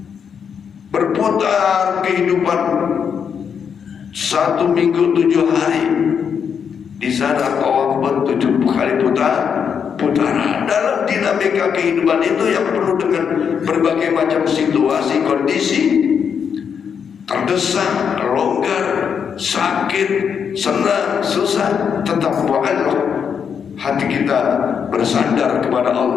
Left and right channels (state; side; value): quieter; right; 7.1 dB